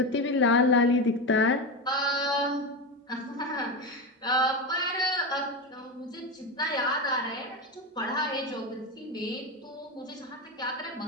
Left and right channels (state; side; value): normal; both; correlation 0.17